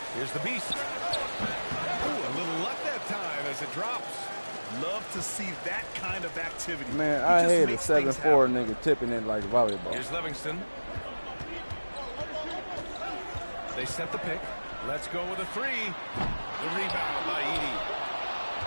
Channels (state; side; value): inverted; both; correlation -1.00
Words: Here's the Beast. Ooh, a little luck that time as it drops. Love to see that kind of activity. Man, I hate a 7-4 nigga tipping it like volleyball. Here's Livingston. They set the pick. Let's go with a 3. The rebound by Edie.